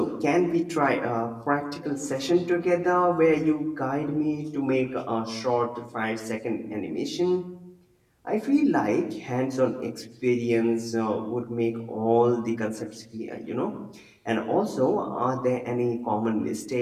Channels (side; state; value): both; identical; correlation 1.00